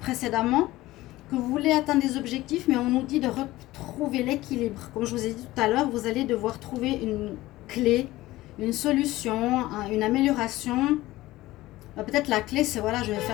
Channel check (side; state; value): right; quieter; 17.5 dB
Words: Que vous voulez atteindre des objectifs, mais on nous dit de retrouver l'équilibre. Comme je vous ai dit tout à l'heure, vous allez devoir trouver une clé, une solution, une amélioration. Peut-être la clé, c'est voilà, je vais